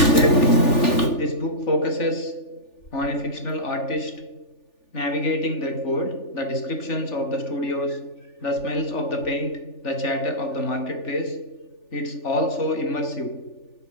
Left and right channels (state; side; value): late; right; 3.4 ms